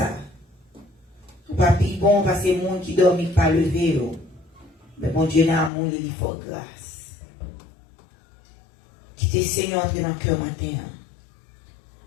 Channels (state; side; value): drops out; right; at 5.7 s